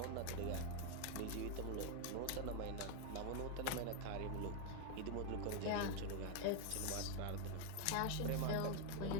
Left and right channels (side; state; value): both; different; correlation 0.01